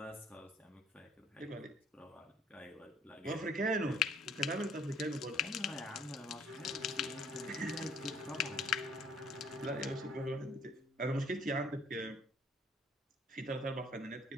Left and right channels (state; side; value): normal; both; correlation 0.61